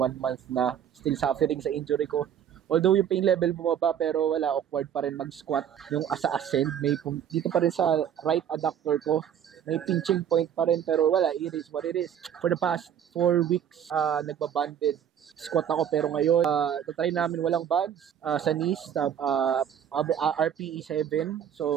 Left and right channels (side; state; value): left; quieter; 9.2 dB